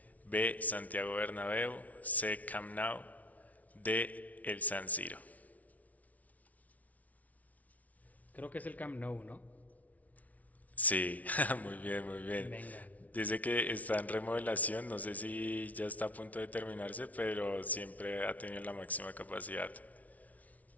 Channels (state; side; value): late; right; 0.071 ms